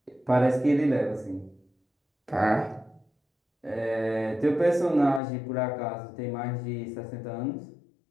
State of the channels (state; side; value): drops out; right; at 5.2 s